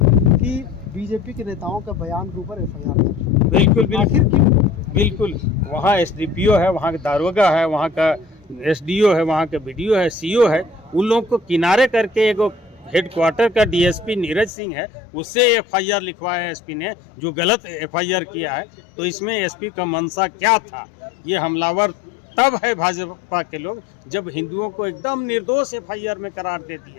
कि बीजेपी के नेताओं का बयान के ऊपर एफआईआर दर्ज। बिल्कुल आखिर क्यों? बिल्कुल वहाँ एसडीपीओ है, वहाँ का दारोगा है, वहाँ का एसडीओ है, वहाँ का बीडीओ है, सीओ है, उन लोगों को किनारे करके एक हेडक्वार्टर का डीएसपी नीरज सिंह है, उससे एफआईआर लिखवाया एसपी ने, जो गलत एफआईआर किया है। तो इसमें एसपी का मंशा क्या था? ये हमलावर तब है भाजपा के लोग जब हिंदुओं को एकदम निर्दोष एफआईआर में करार दे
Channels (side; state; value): right; drops out; at 14.5 s